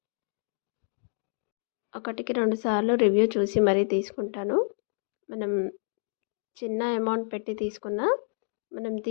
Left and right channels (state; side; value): silent; right; 59 dB below the other